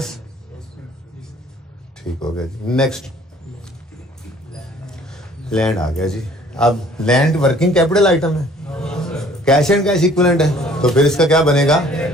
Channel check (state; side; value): normal; both; correlation 0.55